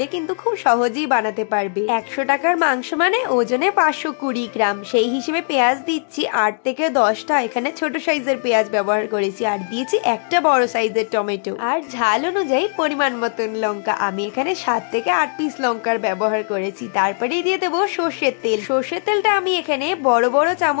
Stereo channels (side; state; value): right; silent; digital silence